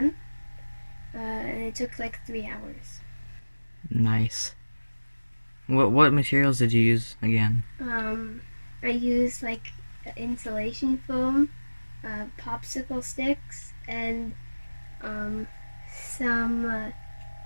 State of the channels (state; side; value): inverted; both; correlation -1.00